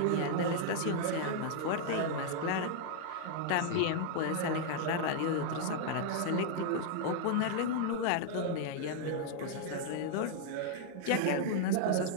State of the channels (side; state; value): both; different; correlation 0.00